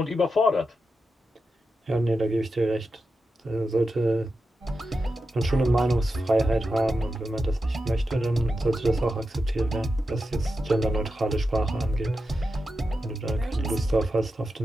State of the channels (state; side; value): normal; both; correlation 0.89